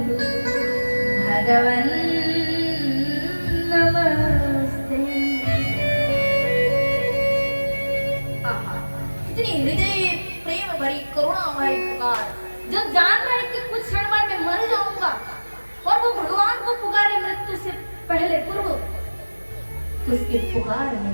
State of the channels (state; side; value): inverted; both; correlation -1.00